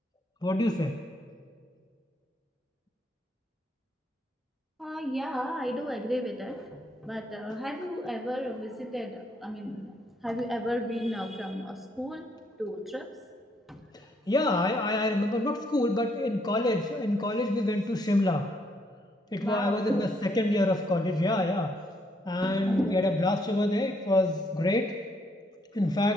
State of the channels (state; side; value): normal; both; correlation 0.71